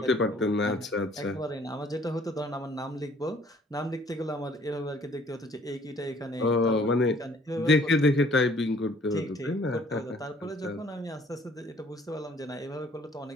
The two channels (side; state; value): both; normal; correlation 0.58